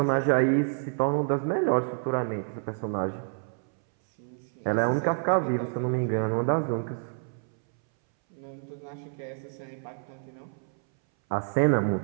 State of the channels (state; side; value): silent; left; 59 dB below the other